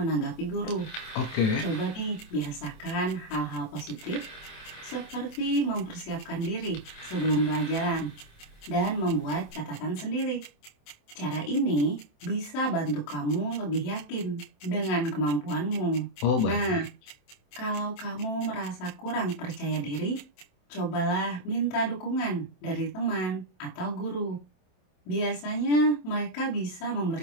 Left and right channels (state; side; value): late; right; 27 ms